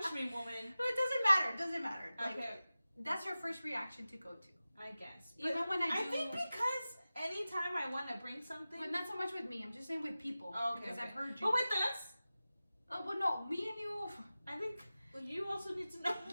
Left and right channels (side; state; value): both; inverted; correlation -0.96